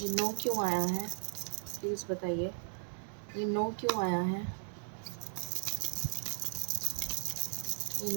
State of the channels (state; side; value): silent; left; digital silence